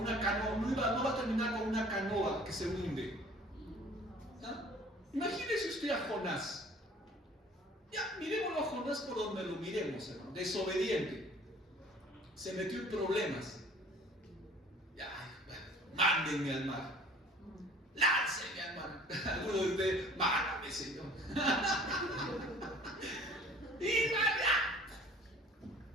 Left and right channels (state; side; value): normal; both; correlation 0.50